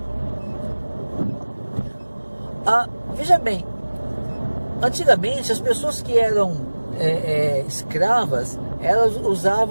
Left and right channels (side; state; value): both; inverted; correlation -1.00